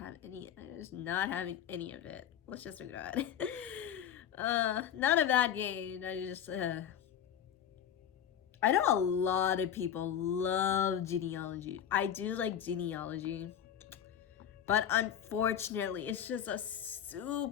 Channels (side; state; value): right; quieter; 9.4 dB